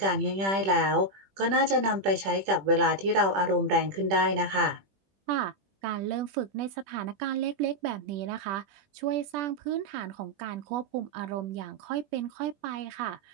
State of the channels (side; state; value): left; late; 20 ms